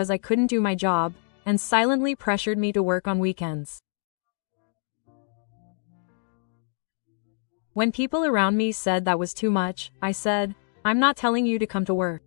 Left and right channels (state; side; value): silent; right; digital silence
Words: I couldn't do my job, and silently pressured me to work on weekends. When people around me said that was too much, I said, I'm not telling you to come to work.